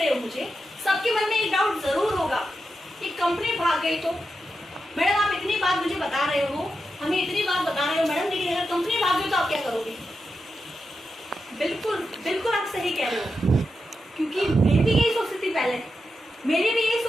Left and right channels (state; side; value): normal; both; correlation 0.88